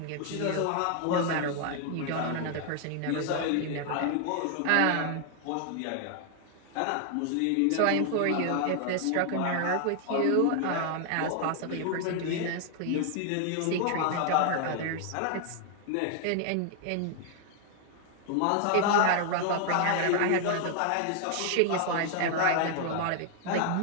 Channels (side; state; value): both; different; correlation 0.00